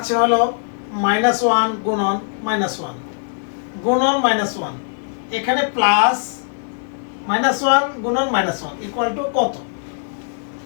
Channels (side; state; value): right; silent; digital silence